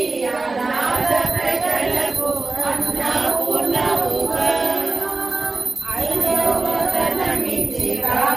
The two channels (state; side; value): quieter; left; 3.5 dB